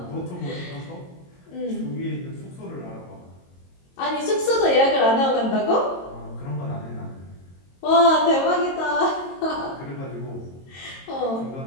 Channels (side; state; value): right; late; 22 ms